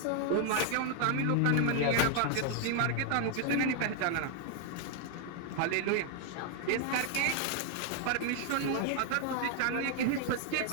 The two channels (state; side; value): different; both; correlation 0.00